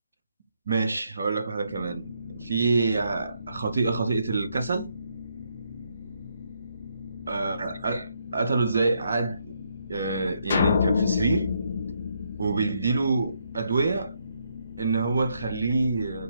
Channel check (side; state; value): both; inverted; correlation -0.76